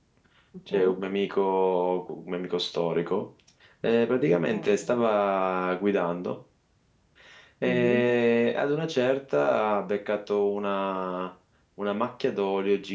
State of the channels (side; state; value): both; identical; correlation 1.00